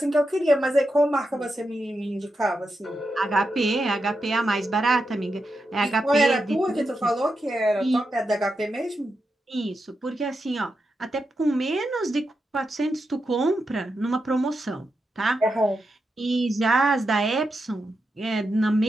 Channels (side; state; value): both; normal; correlation 0.87